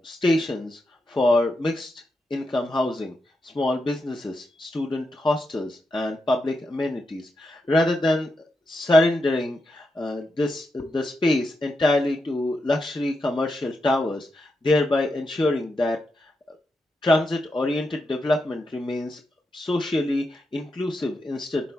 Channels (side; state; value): both; normal; correlation 0.86